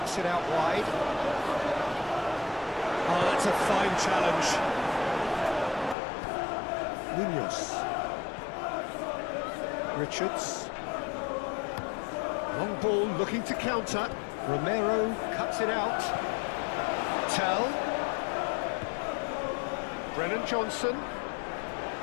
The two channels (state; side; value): drops out; right; at 6.0 s